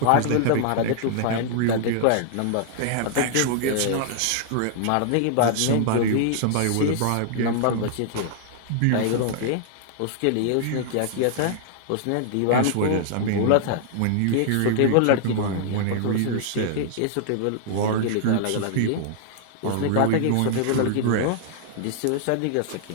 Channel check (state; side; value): different; both; correlation -0.01